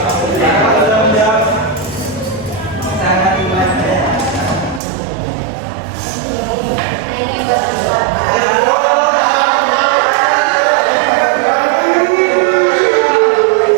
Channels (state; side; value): drops out; left; at 4.8 s